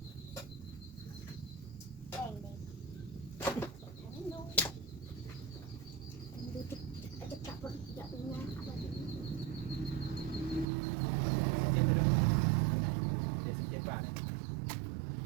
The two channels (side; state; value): left; drops out; at 10.7 s